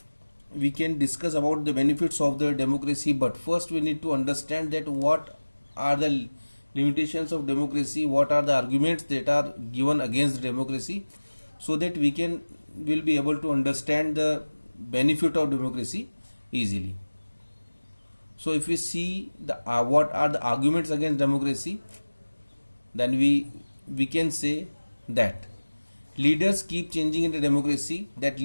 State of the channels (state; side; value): inverted; both; correlation -1.00